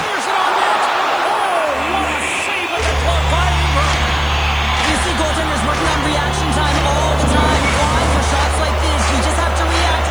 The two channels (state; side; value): noise; left; hiss, 25 dB below the sound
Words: it on net. Oh, what a save with the glove by Ingram. You see goaltenders working on reaction time all the time. Why? For shots like this, you just have to react.